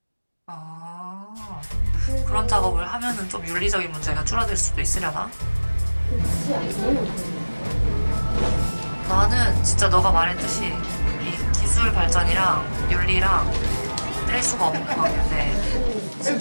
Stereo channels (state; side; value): inverted; both; correlation -1.00